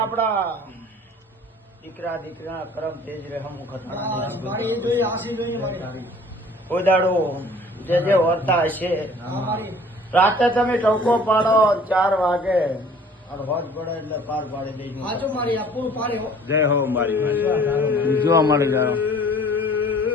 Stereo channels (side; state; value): both; normal; correlation 0.51